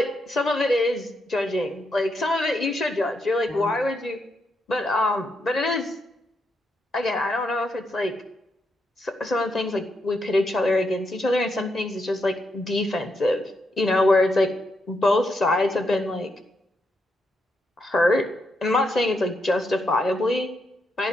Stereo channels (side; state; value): both; normal; correlation 0.81